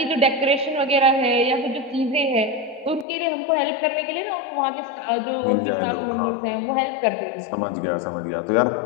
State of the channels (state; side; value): drops out; right; at 3.1 s